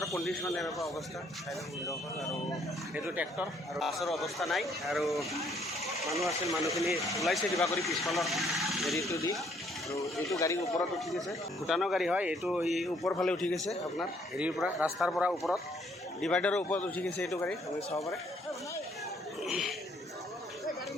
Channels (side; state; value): both; normal; correlation 0.66